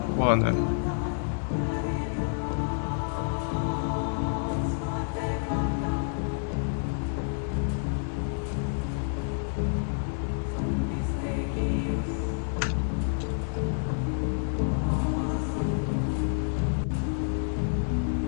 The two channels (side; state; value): right; silent; digital silence